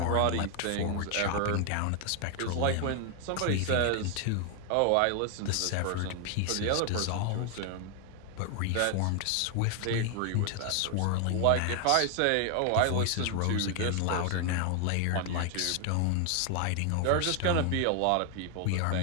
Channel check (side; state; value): both; different; correlation 0.00